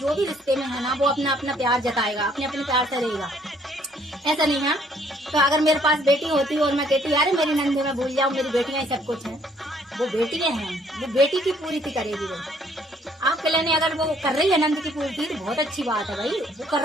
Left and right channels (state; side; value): normal; both; correlation 0.64